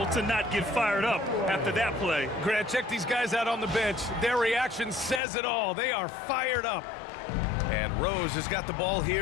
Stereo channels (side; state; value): right; drops out; at 5.2 s